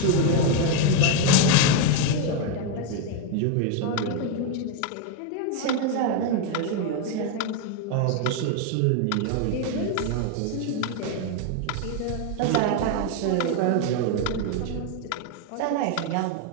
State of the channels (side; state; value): both; different; correlation 0.02